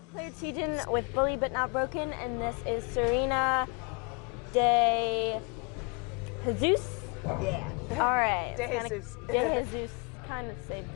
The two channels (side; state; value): right; quieter; 33.1 dB